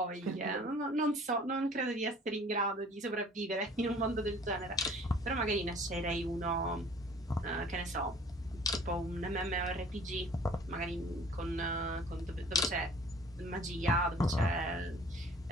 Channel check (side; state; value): both; normal; correlation 0.50